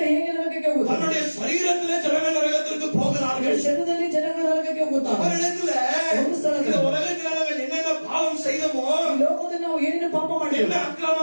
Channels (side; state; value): both; inverted; correlation -1.00